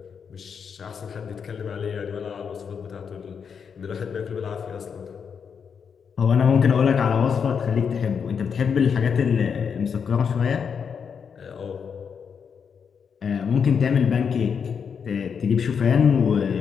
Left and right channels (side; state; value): right; quieter; 6.7 dB